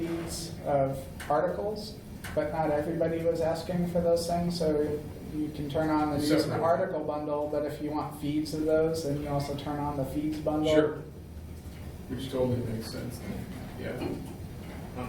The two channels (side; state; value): both; identical; correlation 1.00